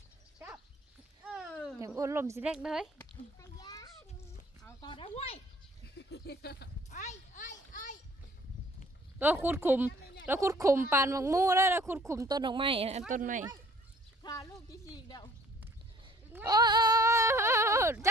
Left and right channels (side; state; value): both; normal; correlation 0.55